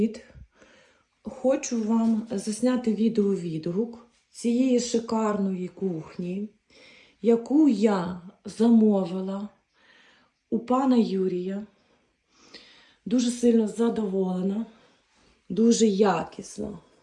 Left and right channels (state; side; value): identical; both; correlation 1.00